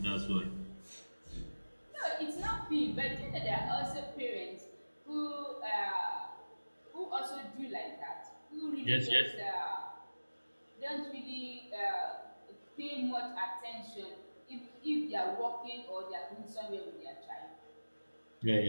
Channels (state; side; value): inverted; both; correlation -1.00